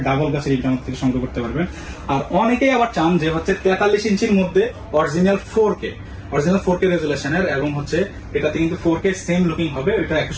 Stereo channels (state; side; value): identical; both; correlation 1.00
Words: double glass এই টিভিটা আমাদের থেকে সংগ্রহ করতে পারবেন। আর অনেকেই আবার চান যে হচ্ছে 43 ইঞ্চির মধ্যে অরিজিনাল 4K রেজুলেশনের, এবং হচ্ছে এটাতে কিন্তু 4K সেম লুকিং হবে। এটা